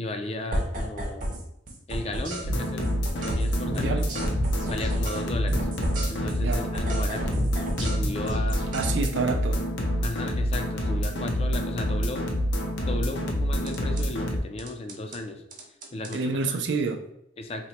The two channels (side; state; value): both; normal; correlation 0.73